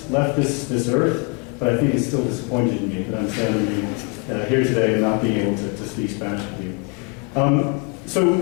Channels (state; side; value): quieter; right; 33.0 dB